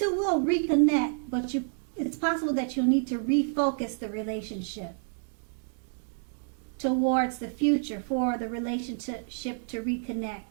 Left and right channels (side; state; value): left; silent; digital silence